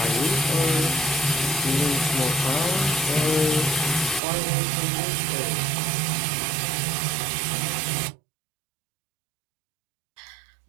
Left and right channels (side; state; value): left; drops out; at 4.2 s